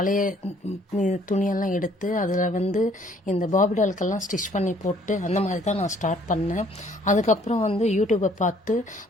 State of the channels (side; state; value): both; normal; correlation 0.61